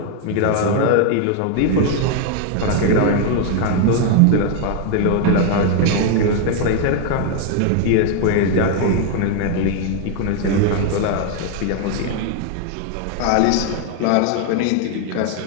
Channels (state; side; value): different; both; correlation 0.01